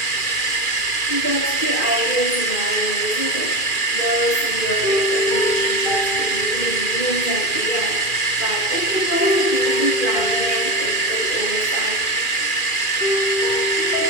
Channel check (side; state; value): right; late; 2.4 ms